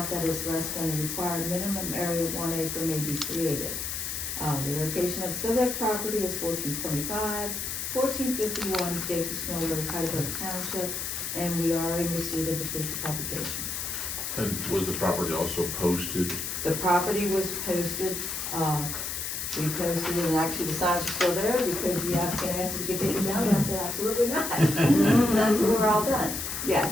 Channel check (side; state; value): left; noise; hiss, 4 dB below the sound